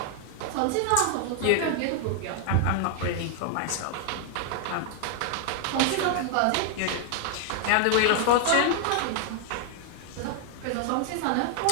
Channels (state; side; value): different; both; correlation 0.00